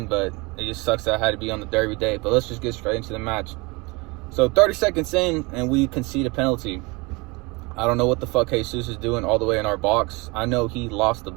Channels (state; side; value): quieter; left; 26.2 dB